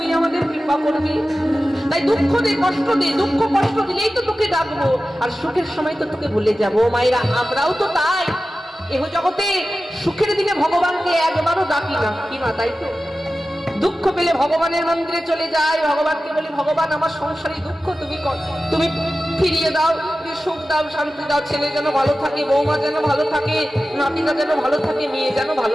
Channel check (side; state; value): both; normal; correlation 0.94